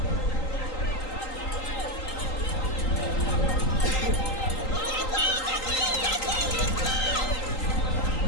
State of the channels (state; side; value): late; right; 3.8 ms